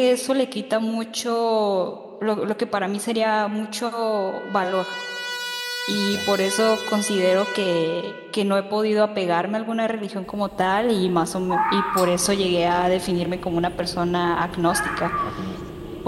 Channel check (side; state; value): both; identical; correlation 1.00